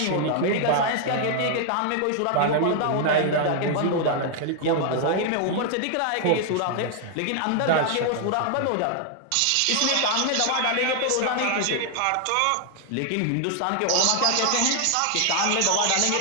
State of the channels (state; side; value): different; both; correlation 0.00